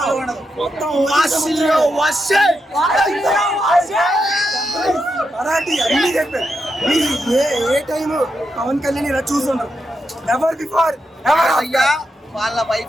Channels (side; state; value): both; normal; correlation 0.85